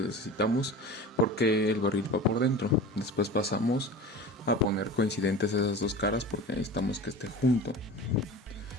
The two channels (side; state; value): both; normal; correlation 0.34